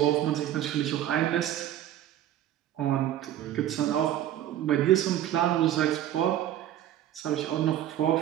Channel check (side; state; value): left; quieter; 11.9 dB